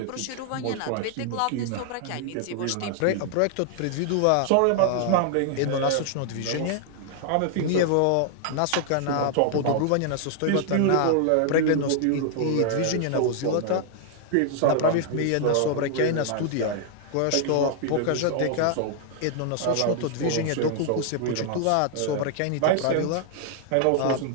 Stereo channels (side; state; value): both; different; correlation 0.00